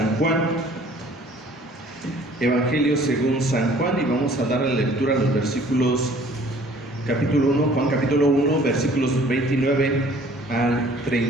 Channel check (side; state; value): both; normal; correlation 0.54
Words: Juan. Evangelio según San Juan, y vamos a dar la lectura a los versículos, capítulo 1, Juan capítulo 1, versículos 29 al